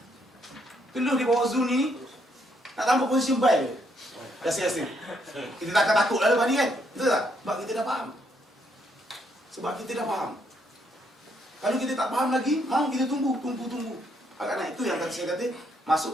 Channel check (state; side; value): normal; both; correlation 0.73